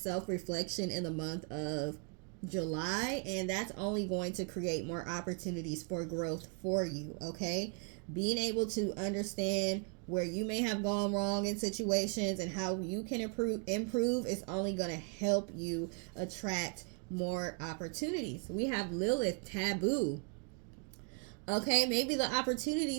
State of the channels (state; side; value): quieter; left; 38.0 dB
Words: in the month of July, and that's only going to create more opportunities for growth for you. Okay, being able to understand where you may have gone wrong in situations and how you can improve is only going to help you attract more opportunities. We have Lilith, taboo. Okay, maybe the